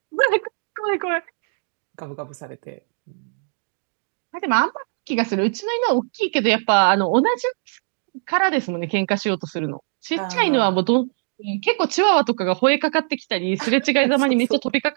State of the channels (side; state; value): left; silent; digital silence